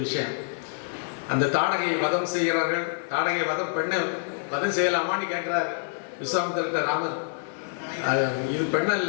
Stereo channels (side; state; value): right; silent; 60 dB below the other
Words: விஷயம். அந்த தாடகை வதம் செய்கிறார்கள். தாடகை வதம், பெண்ணை வதம் செய்யலாமான்னு கேட்கிறார் விஸ்வாமித்திரர்கிட்ட ராமர். இது